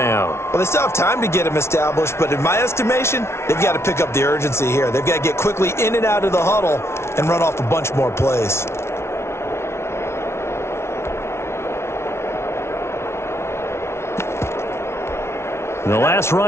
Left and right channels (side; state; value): right; late; 0.13 ms